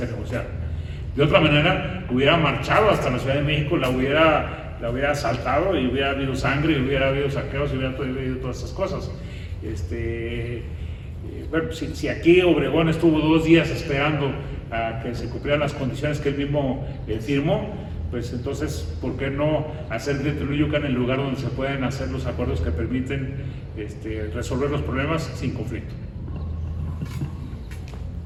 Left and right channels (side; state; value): both; identical; correlation 1.00